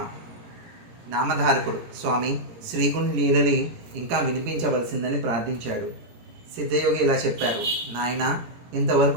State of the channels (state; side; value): late; left; 17 ms